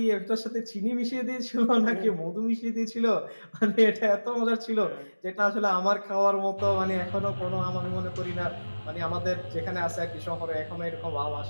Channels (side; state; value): both; inverted; correlation -1.00